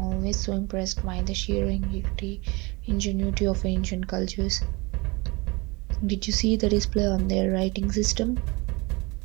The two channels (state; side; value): quieter; left; 25.9 dB